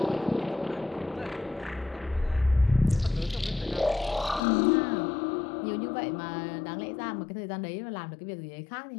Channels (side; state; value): right; drops out; at 4.4 s